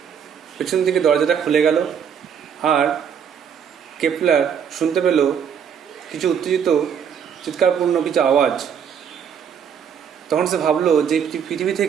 পেছন থেকে দরজাটা খুলে গেল আর কেপলার শুনতে পেল কিছু উত্তেজিত চিৎকারপূর্ণ কিছু আওয়াজ। তখন সে ভাবলো যে পৃথিবী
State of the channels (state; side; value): quieter; left; 7.7 dB